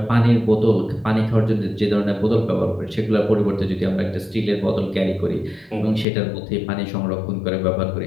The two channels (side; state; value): right; drops out; at 6.1 s